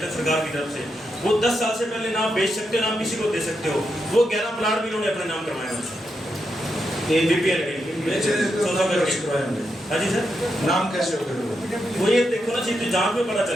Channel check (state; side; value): normal; both; correlation 0.84